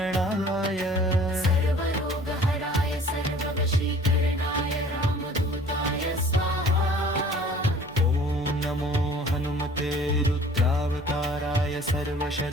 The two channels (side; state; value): right; noise; hum, 25 dB below the sound